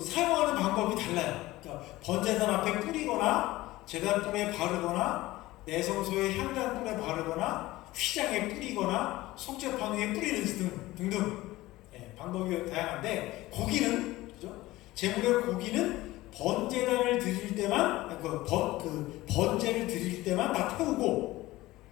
사용하는 방법이 달라요. 그러니까 번제단 앞에 뿌리거나, 제단불에 바르거나, 내성소의 향단불에 바르거나, 휘장에 뿌리거나, 속죄판 위에 뿌리는 등등 방법이 다양한데, 고기는, 그죠? 제물의 고기는 번제단을 드릴 때만, 번제를 드릴 때만 다 태우고,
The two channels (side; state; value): right; quieter; 18.0 dB